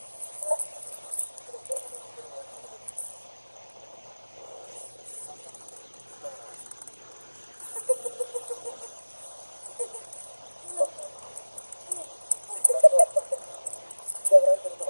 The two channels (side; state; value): both; inverted; correlation -1.00